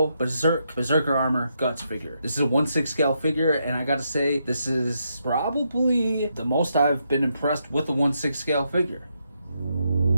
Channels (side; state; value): both; inverted; correlation -0.80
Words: Berserker Armor Guts figure. This is a 1/6 scale figure, and I gotta say, this is probably the most I've been impressed with a 1/6 scale figure.